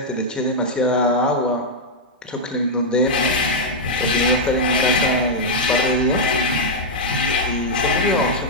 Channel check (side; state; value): both; normal; correlation -0.04